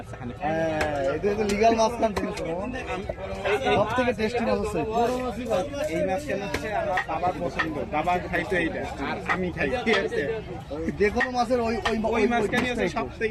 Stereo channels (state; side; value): identical; both; correlation 1.00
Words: এখানে। হ্যাঁ, এটা লিগাল মাছ কান জিনিস সব থেকে টেস্টি মাছ আছে। এই মাছ কেন হচ্ছে আমার বাবার পছন্দ, বাবা খাইতো এইটা আর আমি খাই, ঠিক আছে? যে কোনো মাছের ওই ওই ওই মাছ কেন হচ্ছে সব